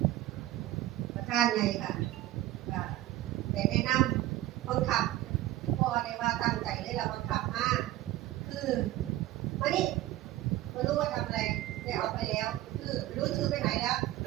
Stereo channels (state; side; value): quieter; left; 15.1 dB